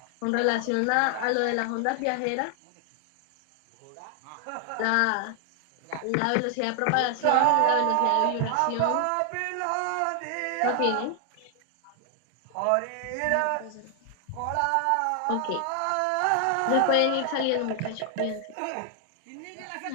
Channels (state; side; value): different; both; correlation 0.00